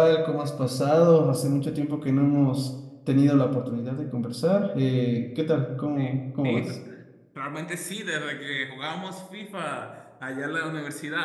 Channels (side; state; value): both; identical; correlation 1.00